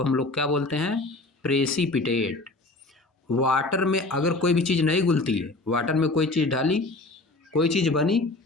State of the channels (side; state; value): right; quieter; 3.0 dB